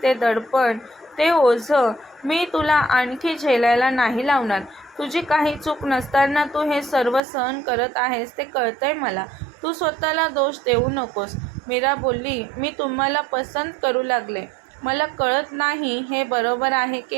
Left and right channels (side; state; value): left; drops out; at 7.2 s